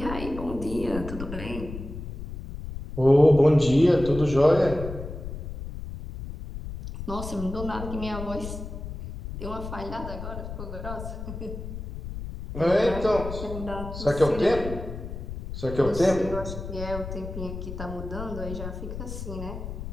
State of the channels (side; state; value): left; noise; rumble, 8 dB below the sound